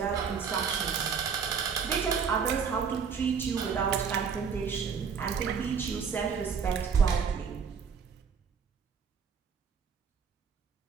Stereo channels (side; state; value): left; quieter; 6.3 dB